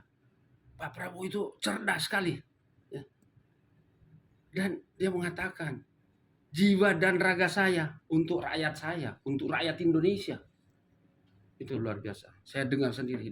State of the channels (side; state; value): both; identical; correlation 1.00